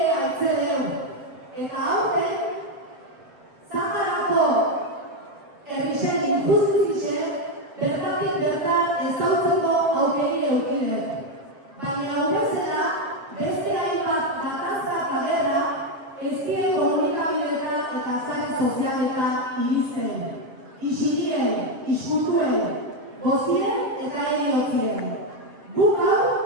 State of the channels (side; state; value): left; late; 7.3 ms